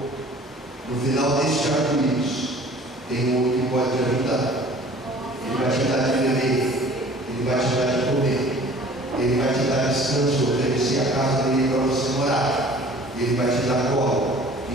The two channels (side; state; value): both; normal; correlation 0.49